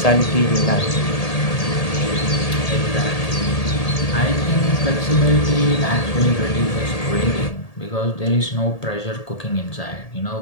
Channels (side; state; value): right; late; 1.8 ms